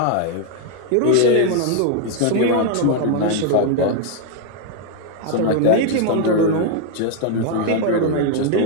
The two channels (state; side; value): different; both; correlation 0.01